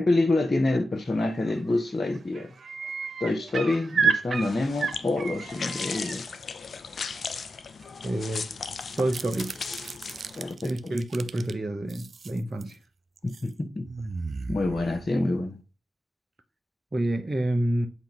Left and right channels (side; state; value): both; normal; correlation 0.90